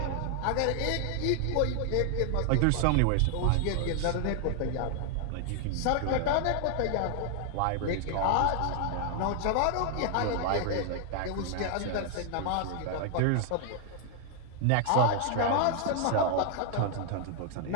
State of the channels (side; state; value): both; different; correlation 0.00